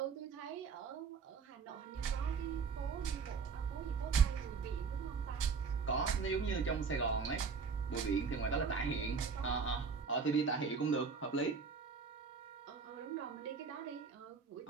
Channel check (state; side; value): quieter; left; 5.4 dB